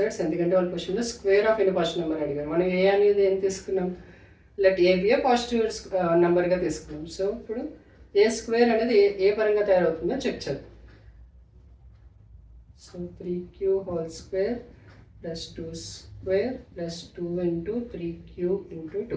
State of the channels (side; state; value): both; identical; correlation 1.00